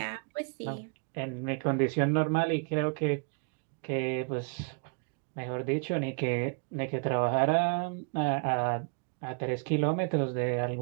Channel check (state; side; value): quieter; left; 36.3 dB